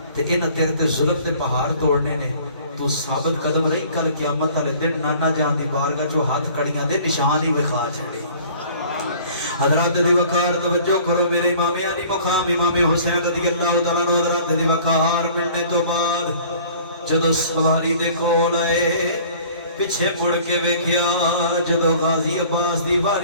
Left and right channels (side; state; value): both; inverted; correlation -0.51